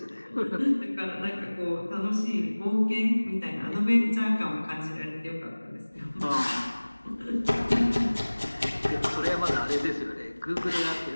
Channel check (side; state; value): both; inverted; correlation -1.00